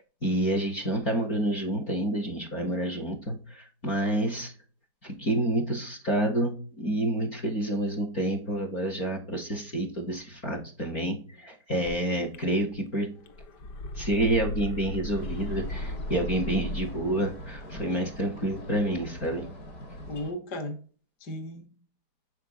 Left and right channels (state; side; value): late; right; 4.4 ms